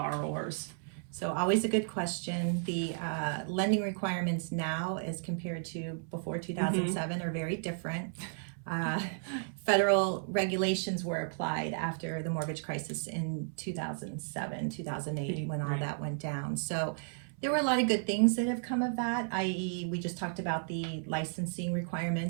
So always a good question. The lending requirements now as compared to before 2007 are very different. Federal regulations were applied after the mortgage crisis in 2007, 2008, when all that went down. So there were a lot of good things that have come of that, i.e. we just talked about the licensing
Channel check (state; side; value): silent; left; 55 dB below the other